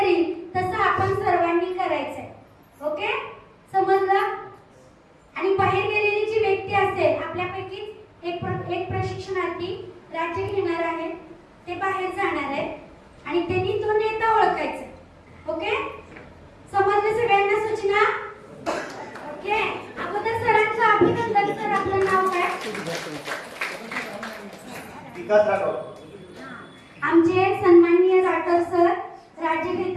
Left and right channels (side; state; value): both; identical; correlation 1.00